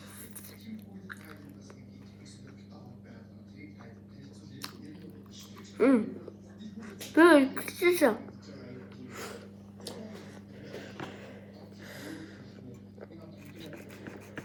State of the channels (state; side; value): identical; both; correlation 1.00